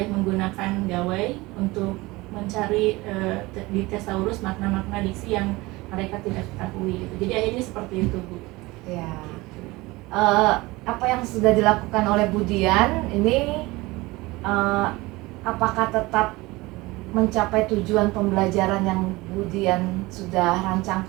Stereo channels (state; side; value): quieter; left; 21.5 dB